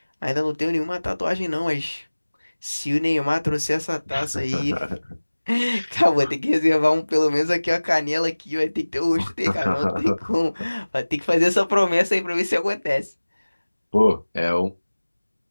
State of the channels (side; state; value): both; inverted; correlation -1.00